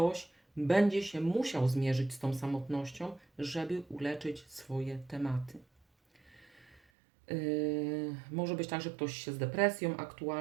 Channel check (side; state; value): left; drops out; at 6.8 s